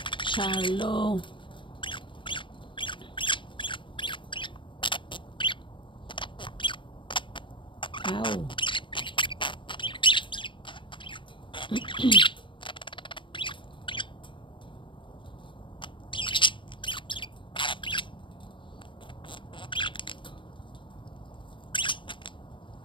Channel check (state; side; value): late; right; 0.24 ms